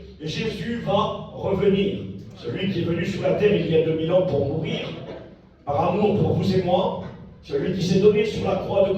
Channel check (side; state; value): both; identical; correlation 1.00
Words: Jésus va revenir. Celui qui est venu sur la terre il y a 2000 ans pour mourir, par amour pour vous et moi, celui qui s'est donné sur la croix de